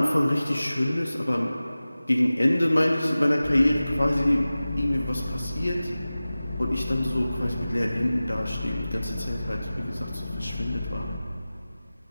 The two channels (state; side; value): inverted; both; correlation -0.97